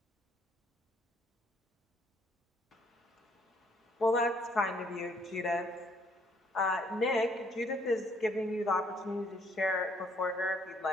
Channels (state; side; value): normal; both; correlation 0.65